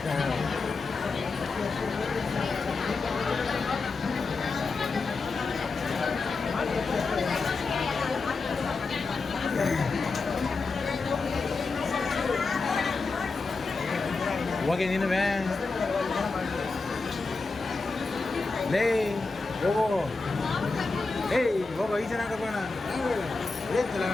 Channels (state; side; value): quieter; right; 4.0 dB